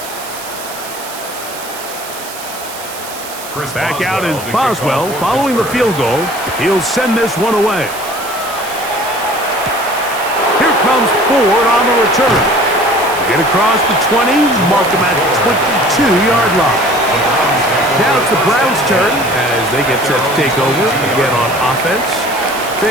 Back out is Boswell following the field goal. He'll send this one away. Here comes Ford on the return. Get across the 20, mark him at the 22-yard line. Now it's the Browns' turn as they get set to take over again on offense.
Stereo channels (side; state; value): right; noise; hiss, 12 dB below the sound